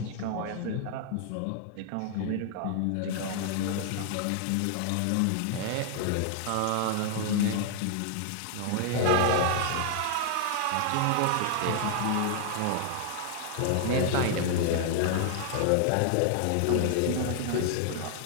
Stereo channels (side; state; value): both; different; correlation 0.00